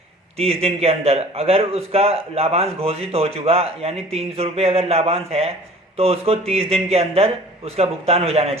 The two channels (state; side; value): normal; both; correlation 0.46